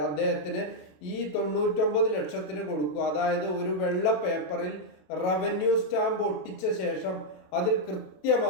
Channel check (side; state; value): right; late; 27 ms